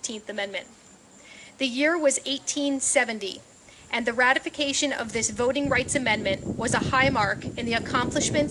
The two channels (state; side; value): identical; both; correlation 1.00